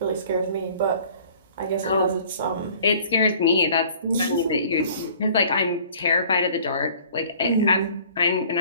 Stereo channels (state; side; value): inverted; both; correlation -0.52